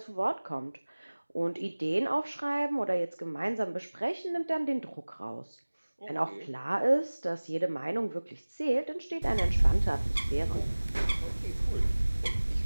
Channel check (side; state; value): both; inverted; correlation -1.00